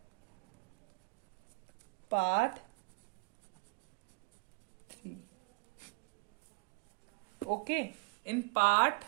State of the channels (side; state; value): left; quieter; 29.2 dB